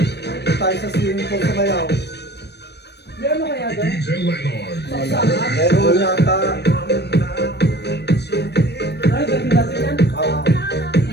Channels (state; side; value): late; right; 0.49 ms